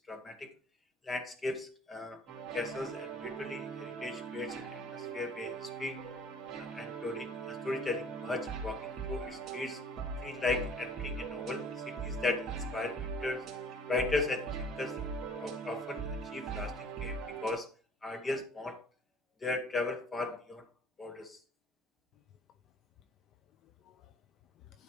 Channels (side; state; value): both; normal; correlation 0.51